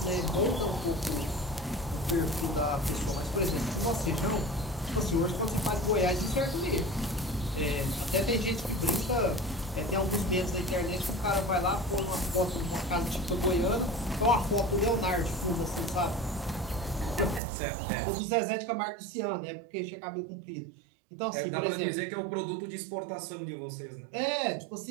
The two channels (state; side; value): drops out; left; at 17.4 s